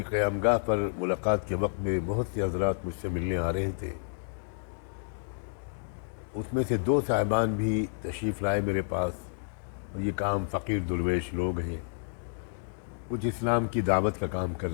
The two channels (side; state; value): right; silent; digital silence